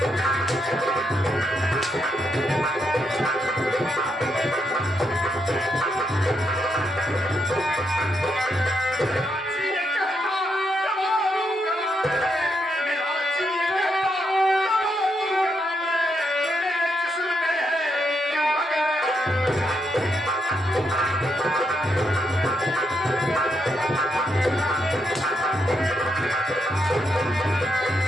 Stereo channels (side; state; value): both; normal; correlation 0.79